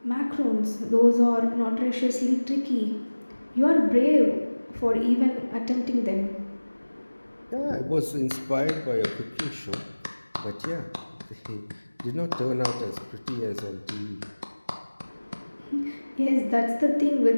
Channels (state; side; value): inverted; both; correlation -1.00